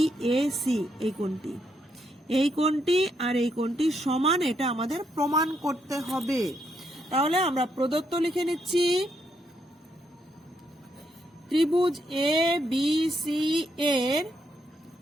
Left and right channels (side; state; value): both; normal; correlation 0.77